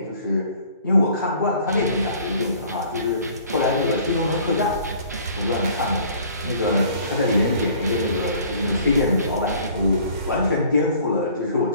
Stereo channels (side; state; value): both; inverted; correlation -0.52